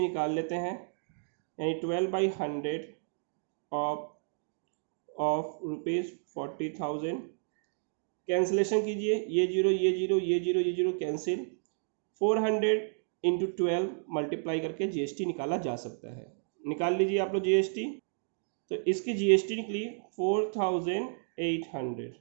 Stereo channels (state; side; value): silent; left; digital silence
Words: निकाल लेते हैं, यानी 12/100 ऑफ रुपीज़ 40,000। कैंसिलेशन कीजिए, ये जीरो ये जीरो ये जीरो ये जीरो कैंसिल, 400 इंटू 12 मल्टीप्लाई करके जीएसटी निकाला जा सकता है। निकाल लीजिए आप लोग जीएसटी। तो इसकी जीएसटी निकली 4,800,